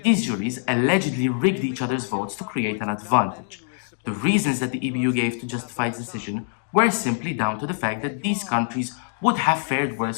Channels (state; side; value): silent; right; digital silence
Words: These juries allegedly rigged each other's votes to create an advantage. The reasons that the EBU gave to justify its decision were simply down to the fact that these countries would have fared